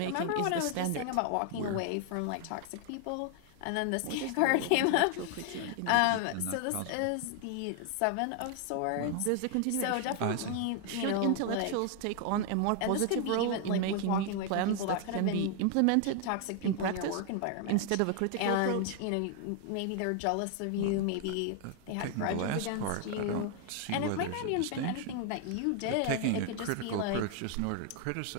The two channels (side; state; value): both; different; correlation 0.00